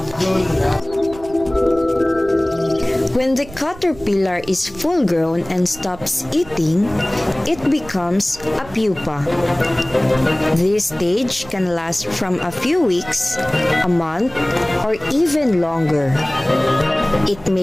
When the caterpillar is full grown and stops eating, it becomes a pupa. This stage can last from a few weeks, a month, or even longer. It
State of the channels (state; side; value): noise; right; rumble, 19 dB below the sound